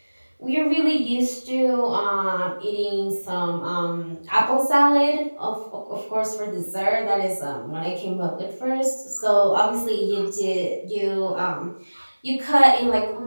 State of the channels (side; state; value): both; inverted; correlation -1.00